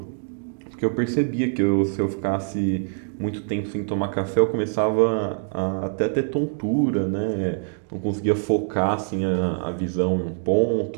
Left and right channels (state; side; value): silent; left; digital silence